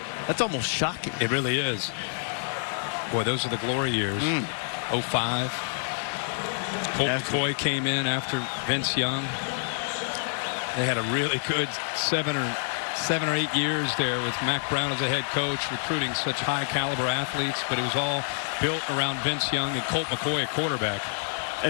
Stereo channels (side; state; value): right; silent; 60 dB below the other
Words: almost shocking. It really is. Boy, those are the glory years. 05. Colt McCoy came in after Vince Young. They had a really good 7 or 7 or 8 years there with Mac Brown as a head coach, recruiting such high caliber athletes, but it was all built around Vince Young and Colt McCoy at quarterback.